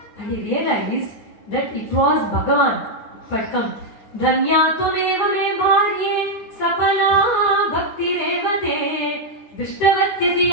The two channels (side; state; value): right; late; 9.7 ms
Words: And he realized that it was Bhagavan who had come. Dhanya tumeva me bharye sapala bhakti revate